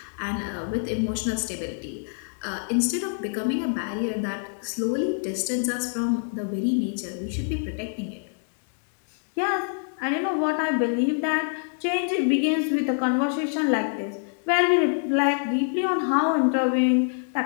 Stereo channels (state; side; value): silent; right; digital silence